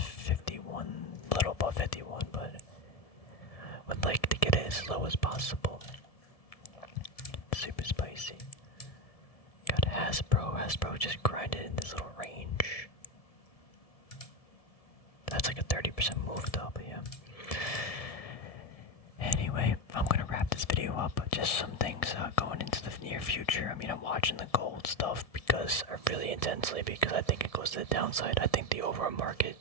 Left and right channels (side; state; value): right; late; 1.7 ms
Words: a little above 51, but would like to get it as low as possible. Super spicy. Got Hasbro just grinded in this little range. That's like a 30% move though, but yeah. Anyway, I'm gonna wrap this video up, but just some things going into the near future. I mean, I'm watching the gold stuff because really intensely because I think it goes to the downside. I think the overall market